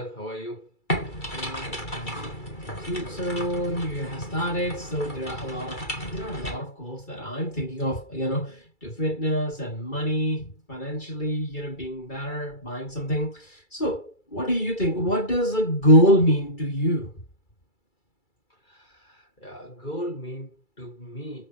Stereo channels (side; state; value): right; late; 2.3 ms